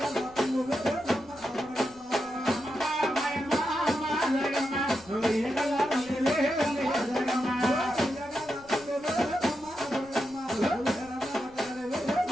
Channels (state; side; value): noise; left; rumble, 25 dB below the sound